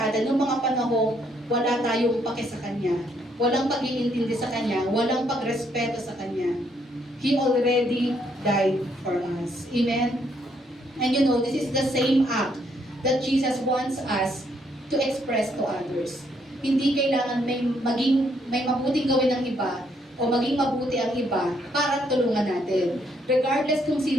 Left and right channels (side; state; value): both; normal; correlation 0.71